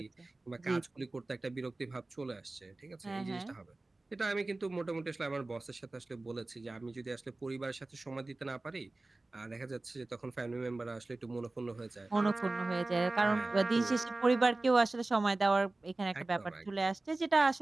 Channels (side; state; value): left; quieter; 3.0 dB